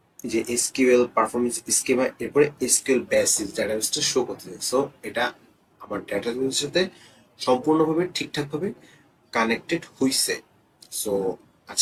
যে এসকিউএল পারফরমেন্স স্কিমা, এরপরে এসকিউএল বেসিস ডেটাবেসটা শো করতেছে। সো এটা আমার ডেটাবেসের সাথে সম্পূর্ণভাবে ঠিকঠাকভাবে কানেক্টেড হইছে। সো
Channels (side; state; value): both; identical; correlation 1.00